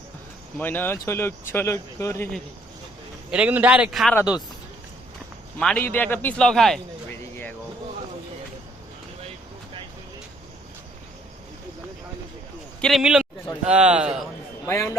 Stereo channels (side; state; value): both; normal; correlation 0.63